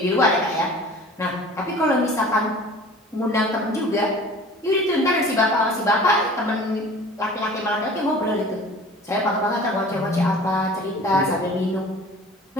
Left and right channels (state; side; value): normal; both; correlation 0.44